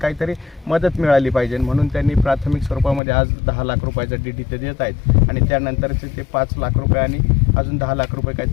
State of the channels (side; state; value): right; drops out; at 3.0 s